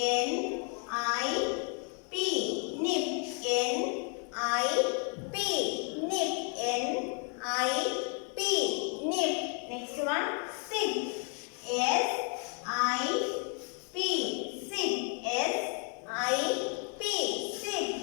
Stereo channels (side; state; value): right; quieter; 39.6 dB